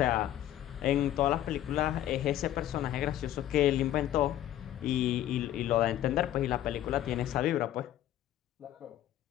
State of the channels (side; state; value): right; quieter; 12.6 dB